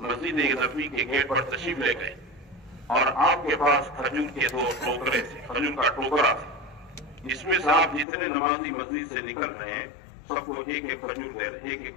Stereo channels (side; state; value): right; drops out; at 8.1 s